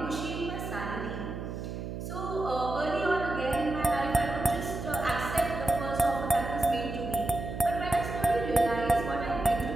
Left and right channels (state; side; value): noise; right; hum, 6 dB below the sound